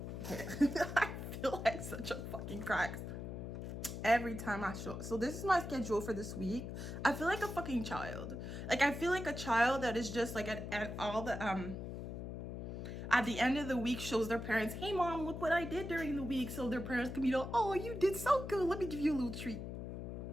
I feel like such a fucking crack every time I show. So this is my schedule for this week. I feel like a fucking child. Like I feel like a child that is just like at all the at the end of the week shows their parents, hey mom, look what I did during the week, so their parents can be like, oh, you did so good, let me give you a little treat.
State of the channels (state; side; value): noise; left; hum, 7 dB below the sound